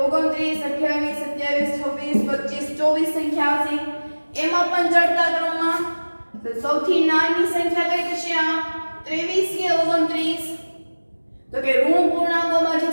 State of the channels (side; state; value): both; inverted; correlation -1.00